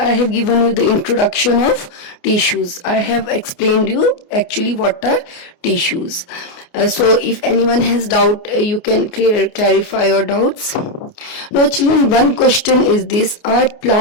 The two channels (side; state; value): right; late; 29 ms